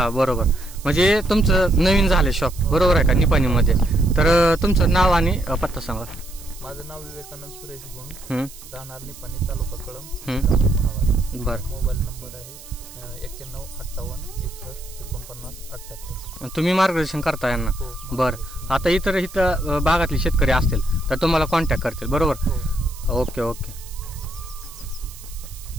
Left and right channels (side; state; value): right; noise; hiss, 18 dB below the sound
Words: बरोबर. म्हणजे तुमचं नवीन झालं शॉप, बरोबर आहे का, निपाणीमध्ये? तर तुमचं नाव आणि पत्ता सांगा. माझं नाव विवेकानंद सुरेश गुंड, हम्म, राहणार निपाणी, तालुका कळंब, हम्म. जिल्हा उस्मानाबाद. बरं. मोबाईल नंबर आहे 91 58 61 49 78. तुम्ही मार्गदर्शन करता यांना? हो. बरं. आता इथं भागातले शेतकरी असतील तर तुम्हाला कॉन्टॅक्ट करतील, बरोबर? हो. ओके ओके